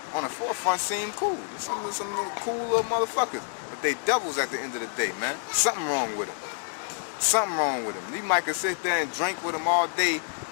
the forefront seem cool. Some little cool little motherfuckers. But they devils at the end of the day, man. Something wrong with them. Something wrong with them. You might could sit there and drink with them all day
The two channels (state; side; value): silent; right; digital silence